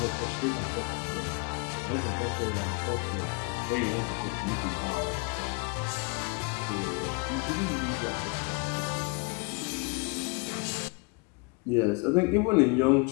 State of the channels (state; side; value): quieter; right; 32.5 dB